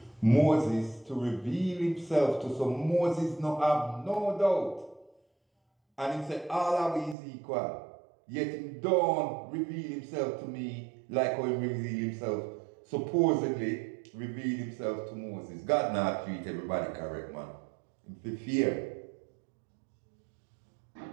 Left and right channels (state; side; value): drops out; left; at 7.2 s